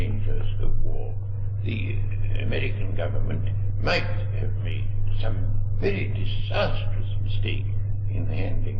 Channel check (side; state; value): both; identical; correlation 1.00